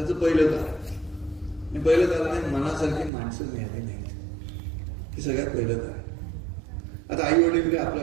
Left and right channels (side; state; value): left; drops out; at 3.1 s